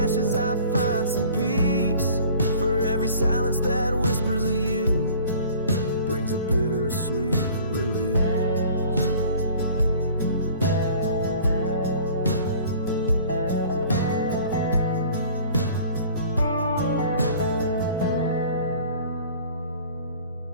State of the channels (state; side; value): inverted; both; correlation -0.49